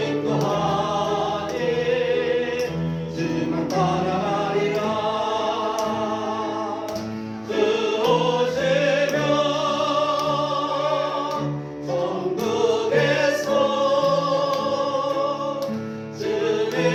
주만 따라가리라. 주 오시면 천국에서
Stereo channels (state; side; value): identical; both; correlation 1.00